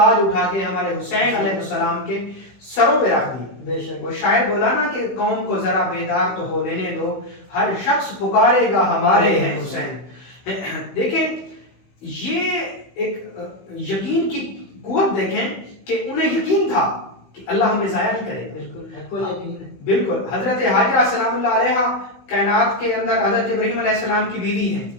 اٹھا کے ہمارے حسین علیہ السلام کے سروں پہ رکھ دی. بے شک. وہ شاعر بولا نا کہ قوم کو ذرا بیدار تو ہو لینے دو, ہر شخص پکارے گا ہمارے ہیں حسین. دیکھیں یہ ایک یقین کی قوت دیکھیں کہ انہیں یقین تھا کہ اللہ ہمیں ضائع نہیں کرے گا. بالکل حق یقین ہے. بالکل. حضرت حاجرہ سلام اللہ علیہ کائنات کے اندر حضرت ابراہیم علیہ السلام کی بیوی ہیں,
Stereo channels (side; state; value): right; late; 16 ms